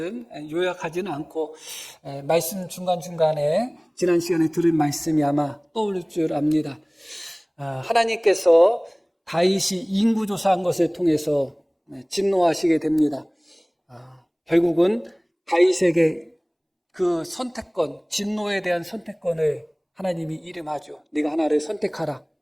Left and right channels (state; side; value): identical; both; correlation 1.00